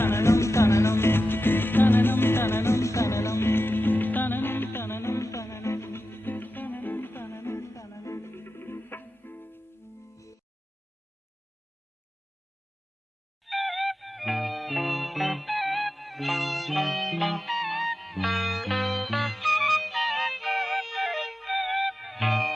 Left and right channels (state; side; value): normal; both; correlation 0.93